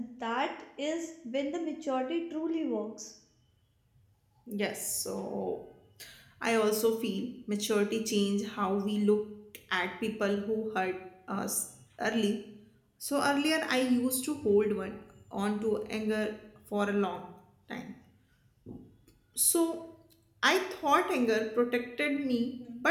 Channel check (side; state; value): both; identical; correlation 1.00